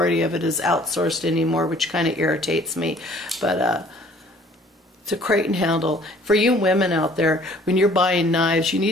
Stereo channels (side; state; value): both; normal; correlation 0.55